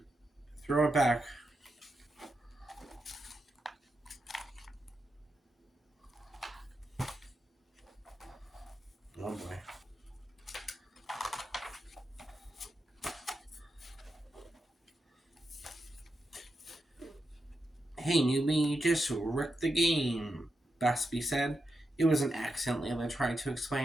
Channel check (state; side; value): normal; both; correlation 0.87